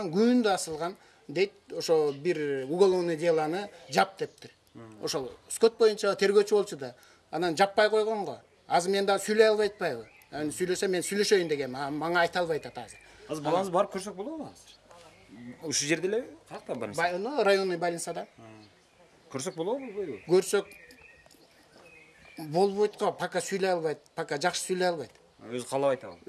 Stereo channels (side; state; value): both; identical; correlation 1.00